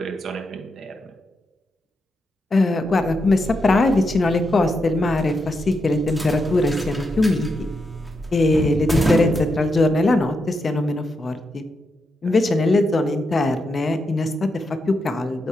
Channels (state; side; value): normal; both; correlation 0.84